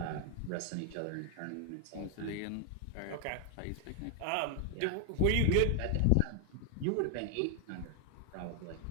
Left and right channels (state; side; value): different; both; correlation 0.00